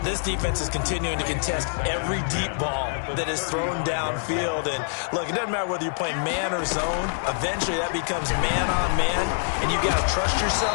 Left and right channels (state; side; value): silent; right; digital silence